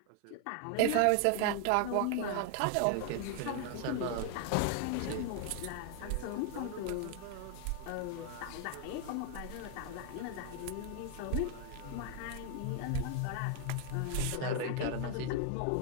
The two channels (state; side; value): different; both; correlation 0.00